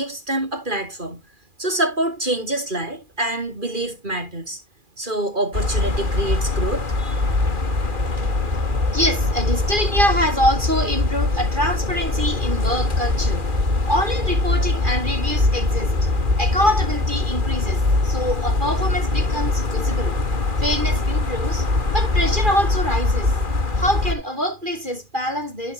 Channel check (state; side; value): late; left; 2.4 ms